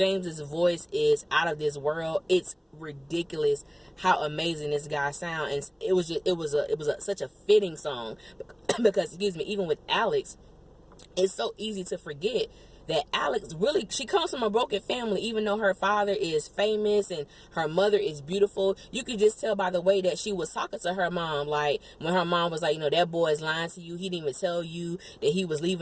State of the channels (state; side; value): identical; both; correlation 1.00